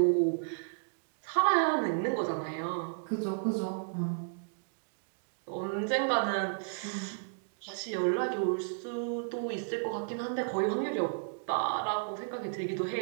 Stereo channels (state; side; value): silent; left; digital silence